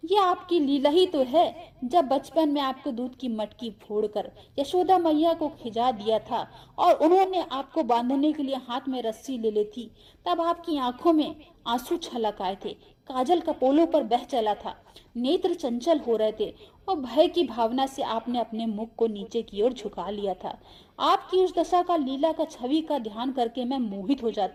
ये आपकी लीला ही तो है। जब बचपन में आपको दूध की मटकी फोड़कर यशोदा मैया को खिजा दिया था और उन्होंने आपको बांधने के लिए हाथ में रस्सी ले ली थी, तब आपकी आंखों में आंसू छलक आए थे, काजल कपोलों पर बह चला था, नेत्र चंचल हो रहे थे और भय की भावना से आपने अपने मुख को नीचे की ओर झुका लिया था। आपकी उस दशा का, लीला का, छवि का ध्यान करके मैं मोहित हो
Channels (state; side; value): identical; both; correlation 1.00